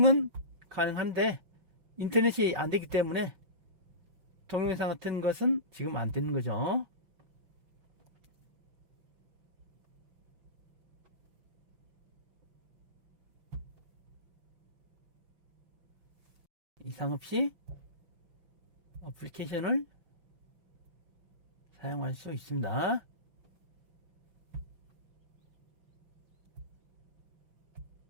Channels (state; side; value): late; left; 5.8 ms